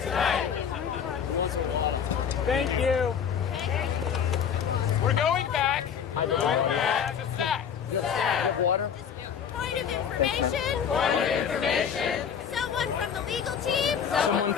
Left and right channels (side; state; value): right; quieter; 7.7 dB